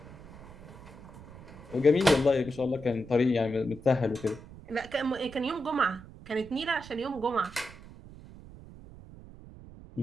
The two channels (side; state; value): right; noise; rumble, 17 dB below the sound